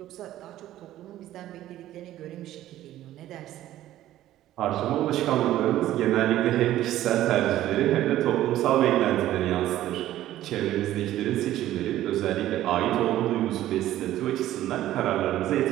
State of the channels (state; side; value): quieter; left; 13.7 dB